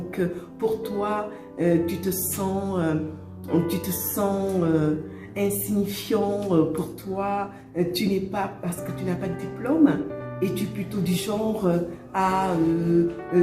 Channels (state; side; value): identical; both; correlation 1.00